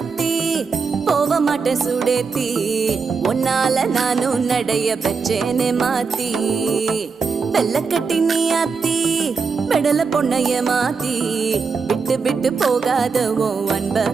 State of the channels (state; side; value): quieter; left; 5.2 dB